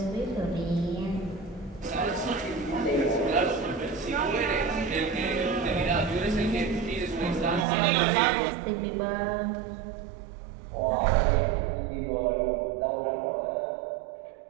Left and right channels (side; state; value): left; drops out; at 7.7 s